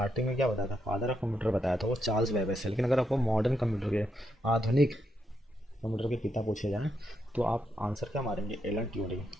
में क्या बताया था, फादर ऑफ कंप्यूटर बताया था वो चार्ल्स बेबेज है। लेकिन अगर आपको मॉडर्न कंप्यूटर के, आधुनिक कंप्यूटर के पिता पूछे जाएँ तो आप आंसर क्या मारेंगे, एलन ट्यूरिंग,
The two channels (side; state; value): both; normal; correlation 0.81